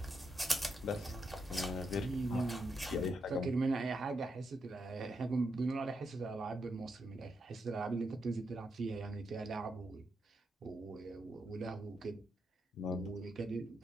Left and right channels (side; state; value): both; normal; correlation 0.83